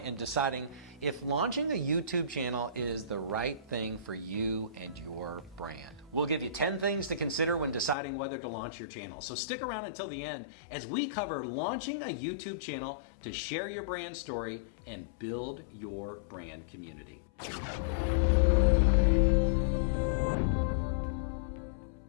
deciding if launching a YouTube channel is the right thing for you and your brand. We'll give you 10 things to consider when deciding whether to launch your channel. So stick around until the end as we cover launching a YouTube channel to share your brand story and build your brand community.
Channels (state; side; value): drops out; right; at 8.0 s